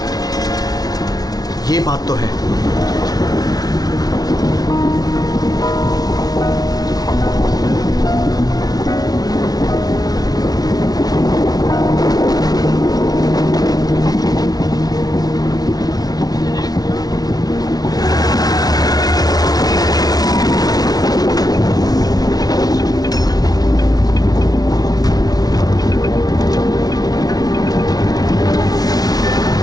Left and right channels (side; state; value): right; late; 0.19 ms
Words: ये बात तो है।